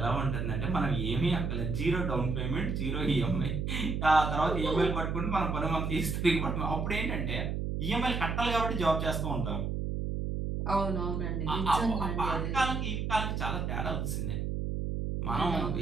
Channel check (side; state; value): right; noise; hum, 1 dB below the sound